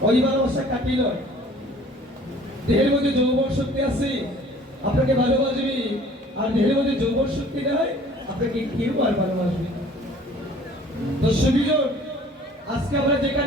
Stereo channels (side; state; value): both; normal; correlation 0.51